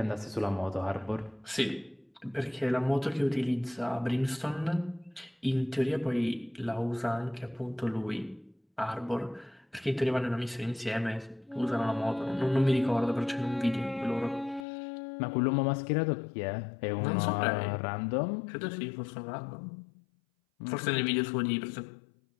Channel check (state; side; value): drops out; right; at 14.7 s